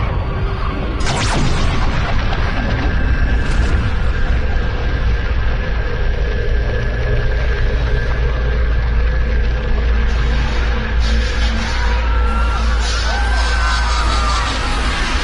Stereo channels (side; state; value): both; identical; correlation 1.00